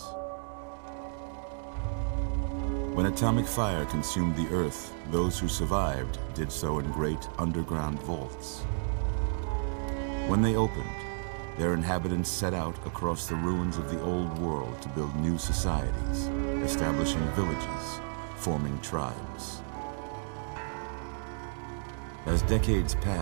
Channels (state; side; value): silent; left; digital silence